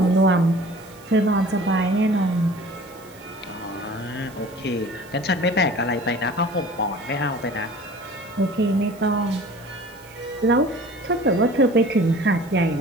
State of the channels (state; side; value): noise; right; hiss, 25 dB below the sound